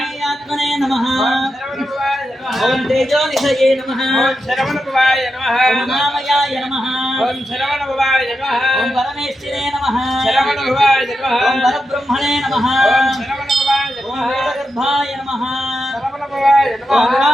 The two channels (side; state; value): both; normal; correlation 0.87